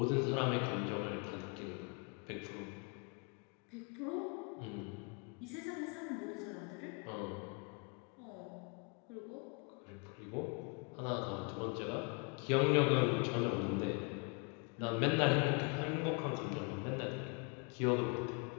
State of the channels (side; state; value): right; quieter; 34.3 dB